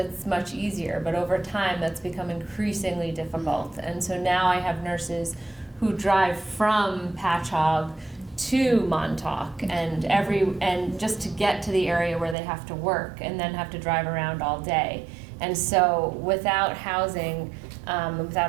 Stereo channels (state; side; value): drops out; left; at 12.4 s